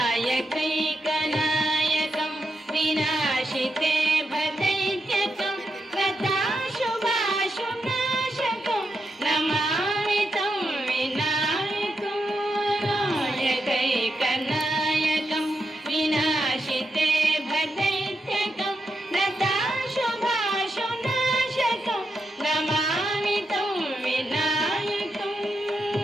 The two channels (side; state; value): both; normal; correlation 0.85